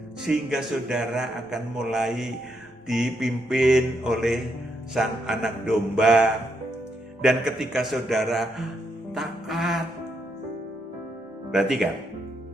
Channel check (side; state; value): both; normal; correlation 0.79